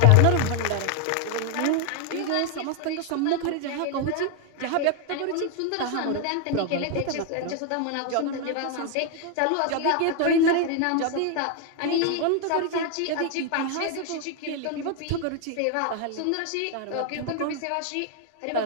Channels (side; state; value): both; different; correlation 0.01